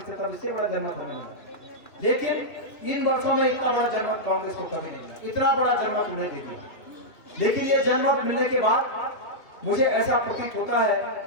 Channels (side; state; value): right; late; 2.7 ms